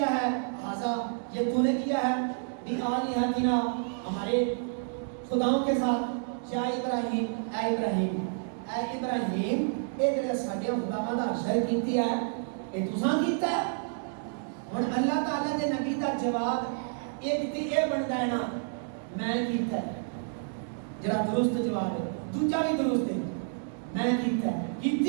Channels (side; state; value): left; silent; digital silence